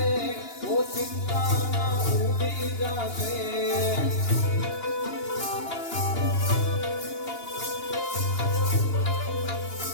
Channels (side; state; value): right; late; 2.8 ms